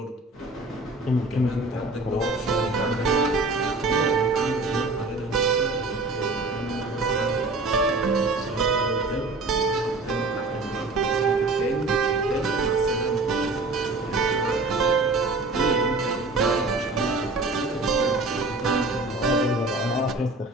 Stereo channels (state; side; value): quieter; left; 3.2 dB